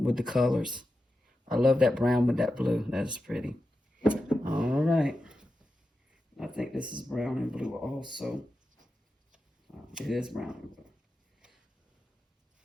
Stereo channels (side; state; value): both; normal; correlation 0.91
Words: with the colors. I love that brown with that blue. That is pretty. All right. I think this is brown and blue also. It is brown and blue.